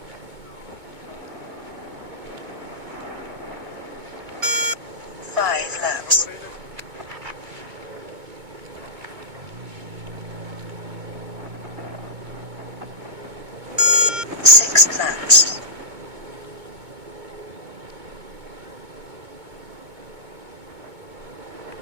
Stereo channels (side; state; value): left; late; 2.2 ms